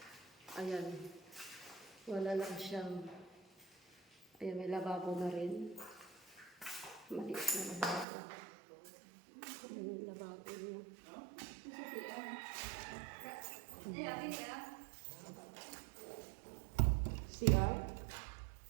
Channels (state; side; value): drops out; left; at 8.1 s